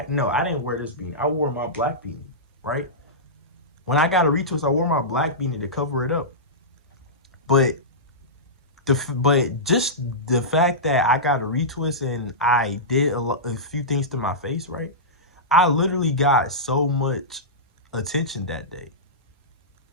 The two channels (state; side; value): normal; both; correlation -0.16